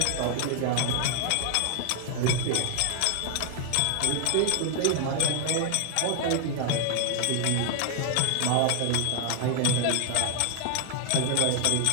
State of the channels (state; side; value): different; both; correlation 0.00